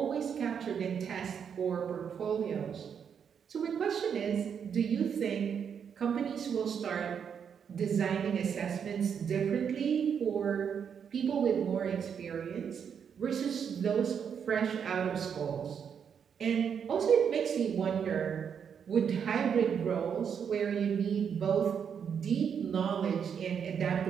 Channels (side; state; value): left; quieter; 7.4 dB